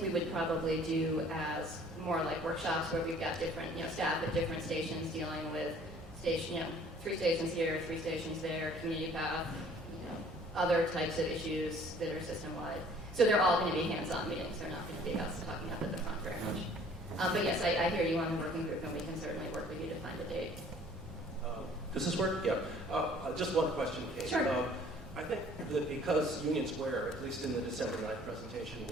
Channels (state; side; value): noise; right; hum, 21 dB below the sound